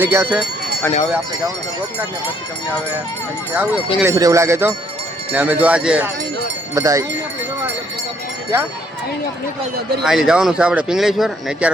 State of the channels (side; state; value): both; normal; correlation 0.67